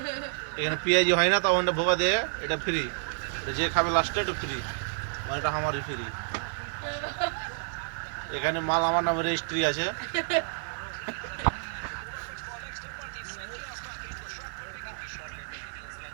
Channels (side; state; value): left; silent; digital silence